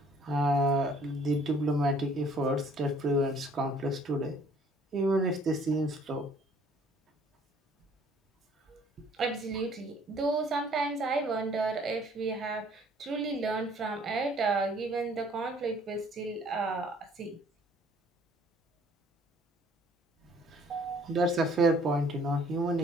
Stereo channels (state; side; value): normal; both; correlation 0.58